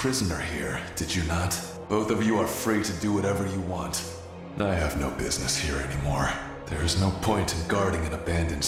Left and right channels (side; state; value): both; identical; correlation 1.00